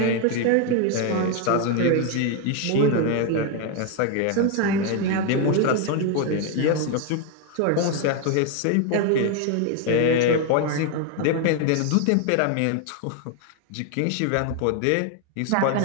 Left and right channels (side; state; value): both; different; correlation 0.01